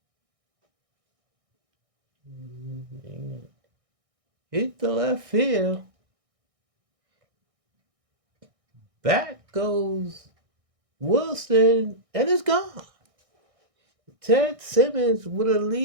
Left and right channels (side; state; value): left; late; 1.6 ms